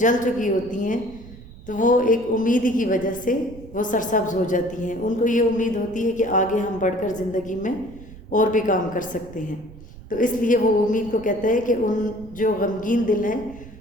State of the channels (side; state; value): right; noise; rumble, 18 dB below the sound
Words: چکی ہوتی ہیں تو وہ ایک امید ہی کی وجہ سے وہ سرسبز ہو جاتی ہیں، ان کو یہ امید ہوتی ہے کہ آگے ہم بڑھ کر زندگی میں اور بھی کام کر سکتے ہیں۔ تو اس لیے وہ امید کو کہتا ہے کہ ان جو غمگین دل ہیں